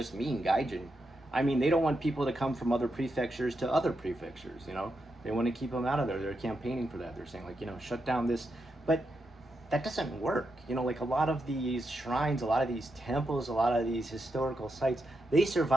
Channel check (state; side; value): normal; both; correlation 0.84